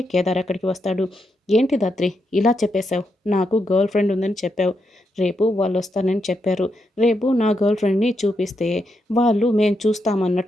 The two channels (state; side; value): normal; both; correlation 0.82